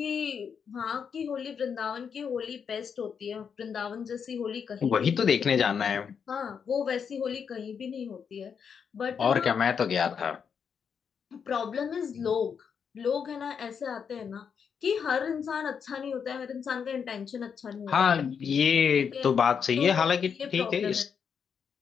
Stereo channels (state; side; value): quieter; right; 6.8 dB